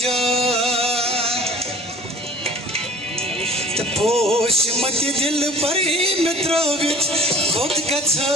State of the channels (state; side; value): normal; both; correlation 0.46